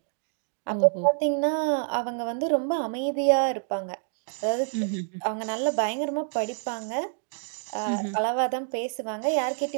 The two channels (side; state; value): left; silent; digital silence